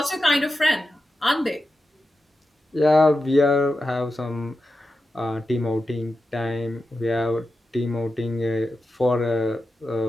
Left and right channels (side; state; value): both; normal; correlation 0.91